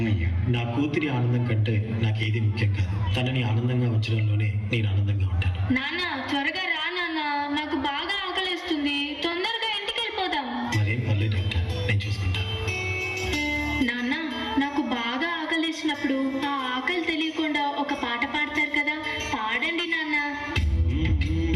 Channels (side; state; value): both; identical; correlation 1.00